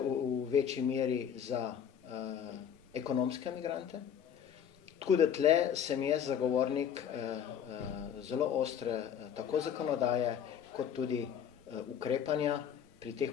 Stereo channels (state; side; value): quieter; right; 8.7 dB